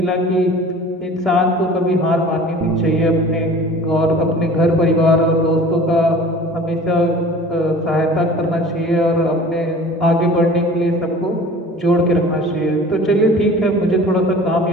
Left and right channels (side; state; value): both; normal; correlation 0.44